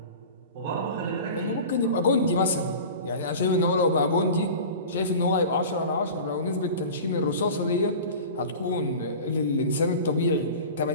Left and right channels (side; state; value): both; inverted; correlation -0.36